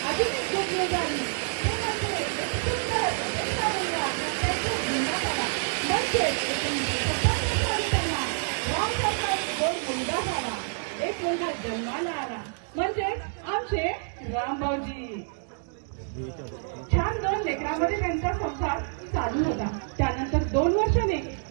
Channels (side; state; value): left; silent; digital silence